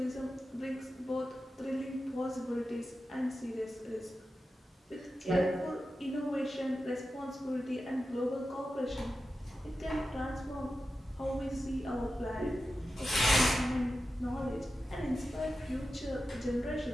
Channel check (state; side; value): normal; both; correlation 0.92